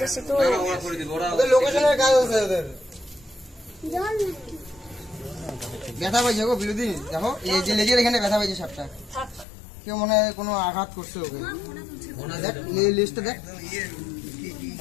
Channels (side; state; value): right; drops out; at 9.5 s